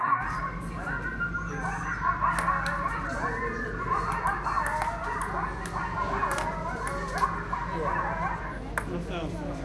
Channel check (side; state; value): both; identical; correlation 1.00